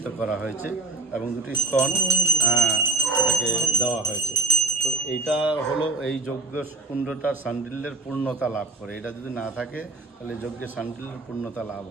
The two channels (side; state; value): left; quieter; 3.5 dB